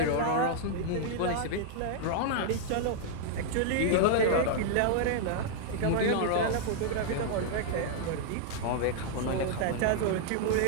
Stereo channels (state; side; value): different; both; correlation 0.00